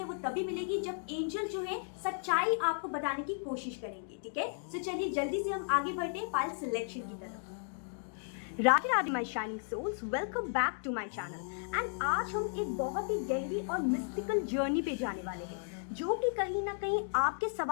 वो तभी मिलेगी जब एंजल जो है सच्चाई आपको बताने की कोशिश करेंगे। ठीक है, तो चलिए जल्दी से हम आगे बढ़ते हैं फाइल सिलेक्शन की तरफ। Radhe Radhe my shining souls, welcome back to my channel. And आज हम एक बहुत ही गहरी और मिस्टिकल जर्नी पे जाने वाले हैं जो कि कहीं ना कहीं आपके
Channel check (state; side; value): silent; right; digital silence